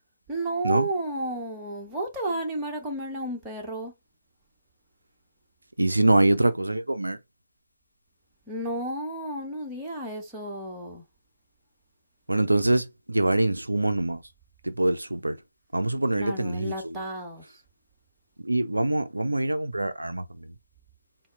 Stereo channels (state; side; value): inverted; both; correlation -0.91